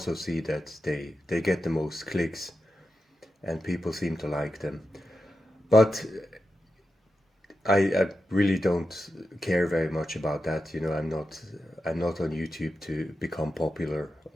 see that they get the most clicks and people seem to like them. But I really don't care very much about that. I'm not on YouTube to become popular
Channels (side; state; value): both; normal; correlation 0.89